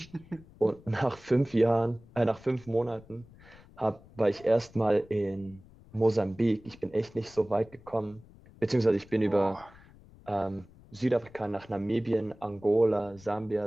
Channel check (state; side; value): noise; left; rumble, 23 dB below the sound